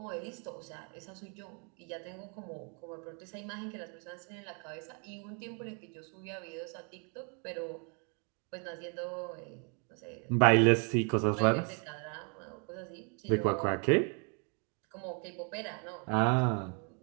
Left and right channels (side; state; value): left; quieter; 37.9 dB